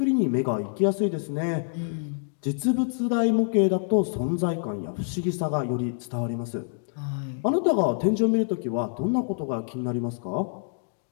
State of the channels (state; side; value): silent; right; digital silence